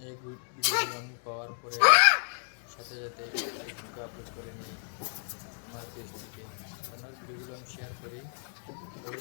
এই ভিডিওগুলো আমি পাওয়ার পরে সাথে সাথে ফেসবুকে আপলোড করে নিই আমার পেজ থেকে। আপনার ভিডিওগুলো আমি শেয়ার করি,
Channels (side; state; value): right; silent; digital silence